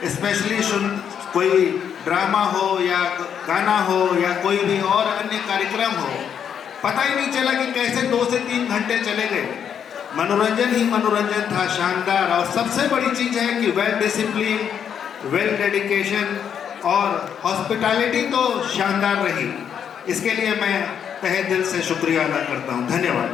स्पेशली कोई ड्रामा हो या गाना हो या कोई भी और अन्य कार्यक्रम हो, पता ही नहीं चला कि कैसे 2 से 3 घंटे चले गए। मनोरंजन ही मनोरंजन था, शानदार। और सबसे बड़ी चीज़ है कि वेल डिसिप्लिन, वेल डेडिकेशन और हॉस्पिटैलिटी तो शानदार रही। इसके लिए मैं तहे दिल से शुक्रिया अदा करता हूँ। धन्यवाद।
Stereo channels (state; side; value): quieter; right; 8.2 dB